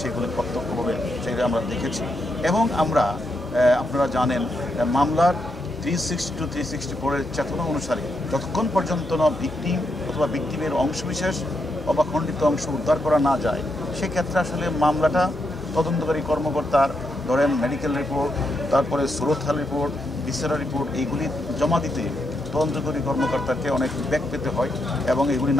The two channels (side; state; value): both; normal; correlation 0.81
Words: সেগুলি প্রত্যক্ষভাবে সেগুলি আমরা দেখেছি। এবং আমরা আপনারা জানেন মামলার 360 to 364 চেতনা অনুসারে যতক্ষণ পর্যন্ত না ভিকটিম অথবা ভিকটিমের অংশবিশেষ অথবা খণ্ডিত অংশ উদ্ধার করা না যায়, সেক্ষেত্রে আসলে মামলাটা তদন্তকারী কর্মকর্তার ধরেন মেডিকেল রিপোর্ট, তারপরে সুরতহাল রিপোর্ট, ভিসেরা রিপোর্ট, এইগুলি জমা দিতে তদন্তকারী কর্মকর্তাকে অনেক ব্যাক পেতে হয় এবং এগুলি